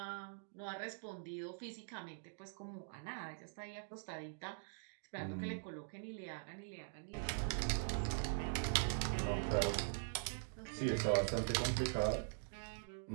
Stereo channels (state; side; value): silent; left; digital silence